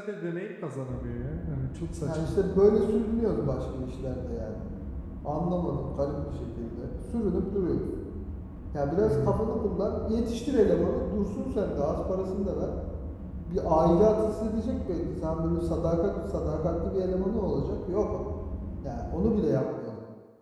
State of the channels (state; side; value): identical; both; correlation 1.00